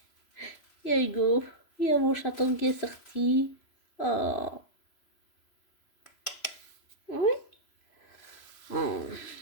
Il y a Hugo, il y a mon chaton qui est sorti. Oh. Oui. Oh.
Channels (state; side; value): late; right; 3.0 ms